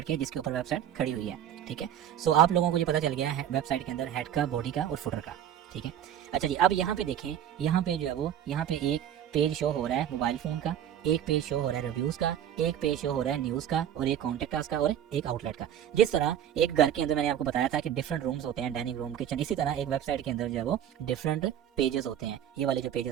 के, जिसके ऊपर वेबसाइट खड़ी हुई है, ठीक है। सो आप लोगों को ये पता चल गया है वेबसाइट के अंदर हेड का, बॉडी का और फुटर का, ठीक है। अच्छा जी, अब यहाँ पे देखें, यहाँ पे जो है वो यहाँ पे एक पेज शो हो रहा है मोबाइल फोन का, एक पेज शो हो रहा है रिव्यूज का, एक पेज शो हो रहा है न्यूज का और एक कॉन्टेक्ट अस का और एक आउटलेट का। जिस तरह एक घर के अंदर मैंने आपको बताया था कि डिफरेंट रूम्स होते हैं, डाइनिंग रूम, किचन, इसी तरह एक वेबसाइट के अंदर जो है वो डिफरेंट पेजेस होते हैं। ये वाले जो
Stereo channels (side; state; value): left; quieter; 10.1 dB